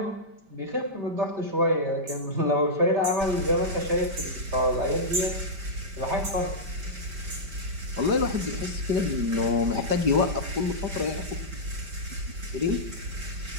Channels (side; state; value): left; late; 5.1 ms